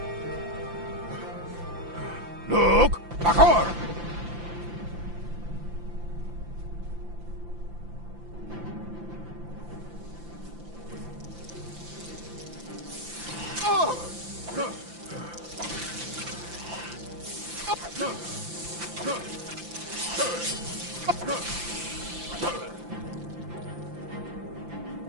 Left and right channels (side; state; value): left; late; 5.8 ms